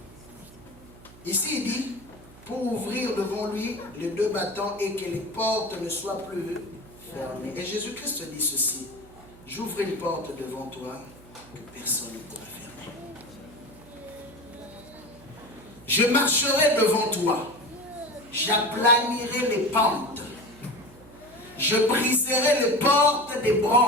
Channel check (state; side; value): noise; right; hum, 22 dB below the sound